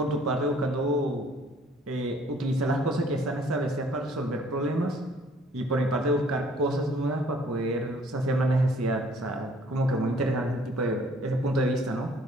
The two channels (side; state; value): both; normal; correlation 0.58